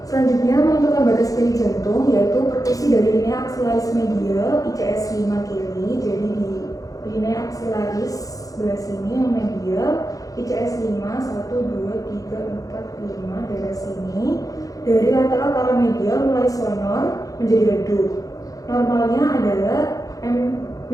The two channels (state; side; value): late; right; 0.17 ms